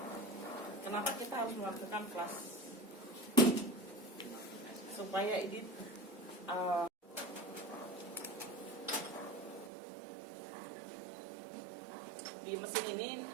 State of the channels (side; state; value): left; drops out; at 9.7 s